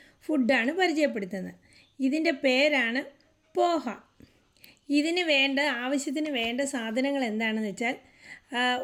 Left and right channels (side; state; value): both; identical; correlation 1.00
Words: ഫുഡാണ് പരിചയപ്പെടുത്തുന്നത്. ഇതിൻ്റെ പേരാണ് പോഹ. ആവശ്യത്തിന് വേണ്ട സാധനങ്ങൾ എന്താണെന്ന് വെച്ചാൽ,